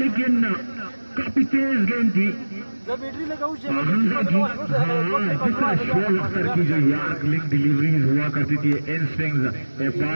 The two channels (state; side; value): inverted; both; correlation -1.00